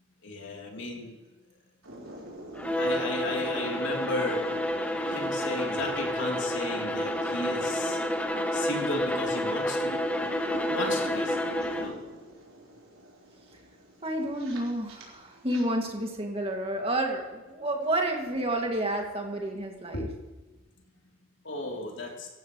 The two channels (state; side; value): normal; both; correlation 0.53